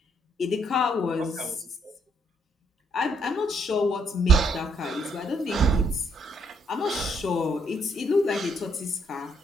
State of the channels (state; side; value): normal; both; correlation 0.71